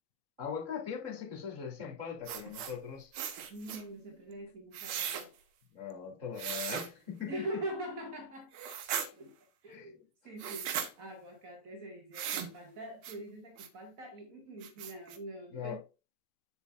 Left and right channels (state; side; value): late; left; 4.2 ms